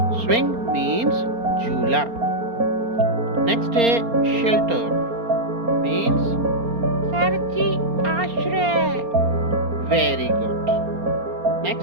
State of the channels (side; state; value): left; late; 4.3 ms